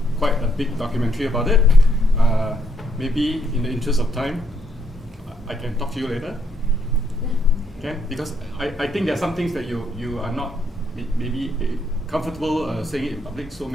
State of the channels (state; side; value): normal; both; correlation 0.73